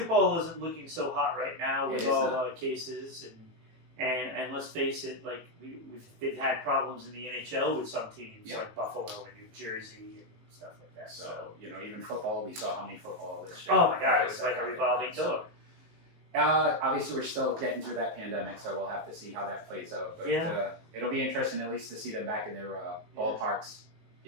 isn't looking so hot right now It with is all not. the cases and let's face it, like they've had problems in the NHL with some teams Yeah. like Buffalo and New Jersey and stuff like that. So, even football, we saw how many football this year. Oh my God, it's like a revolving door. Obviously, we're still getting through that pandemic, so we'll have to see how that plays out. But Yeah. it'll be interesting at least to see them back in their ballparks,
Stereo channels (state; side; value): late; left; 19 ms